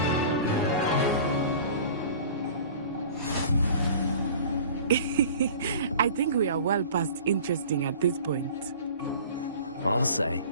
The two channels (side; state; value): both; inverted; correlation -0.43